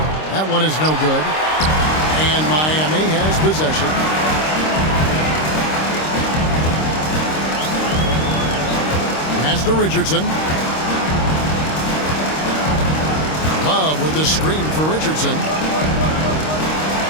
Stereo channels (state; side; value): late; right; 26 ms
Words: That one is no good. And Miami has possession. Pass to Richardson. Love with the screen for Richardson.